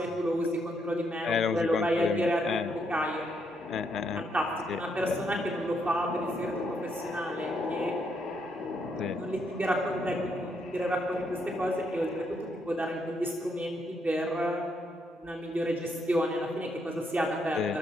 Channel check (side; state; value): both; normal; correlation 0.76